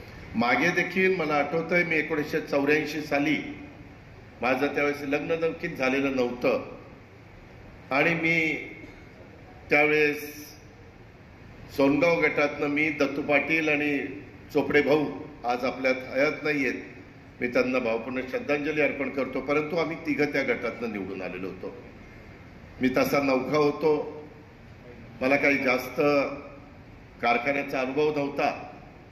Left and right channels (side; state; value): both; identical; correlation 1.00